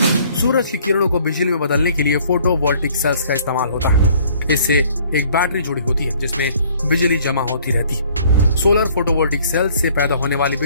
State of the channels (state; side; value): inverted; both; correlation -0.57